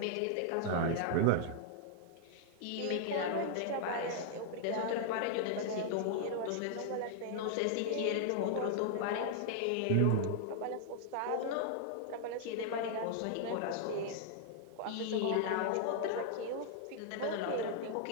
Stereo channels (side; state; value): both; different; correlation -0.01